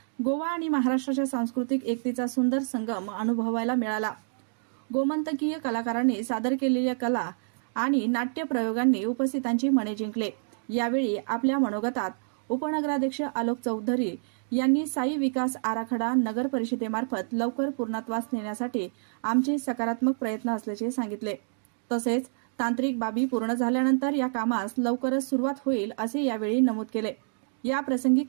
गोवा आणि महाराष्ट्राच्या सांस्कृतिक एकतेचा सुंदर संगम अनुभवायला मिळाला। गोमंतकीय कलाकारांनी सादर केलेल्या कला आणि नाट्य प्रयोगांनी उपस्थितांची मने जिंकले। यावेळी आपल्या मनोगतात उपनगराध्यक्ष आलोक चौधरी यांनी साई विकास आराखडा नगर परिषदेमार्फत लवकर पूर्णत्वास नेण्यासाठी आमचे सकारात्मक प्रयत्न असल्याचे सांगितले। तसेच तांत्रिक बाबी पूर्ण झाल्यानंतर या कामास लवकरच सुरुवात होईल असे यावेळी नमूद केले। या प्रसंगी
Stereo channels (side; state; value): left; silent; digital silence